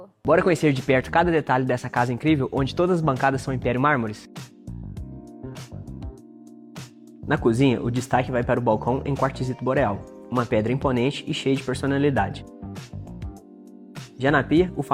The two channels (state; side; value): identical; both; correlation 1.00